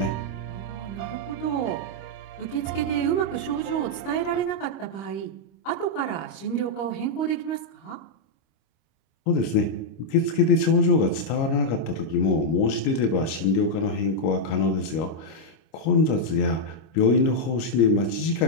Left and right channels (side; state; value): right; late; 25 ms